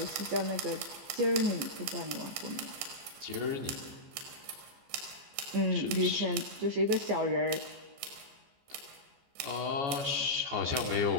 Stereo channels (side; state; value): left; late; 14 ms